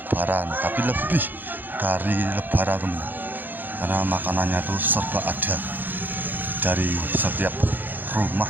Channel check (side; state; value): left; late; 0.088 ms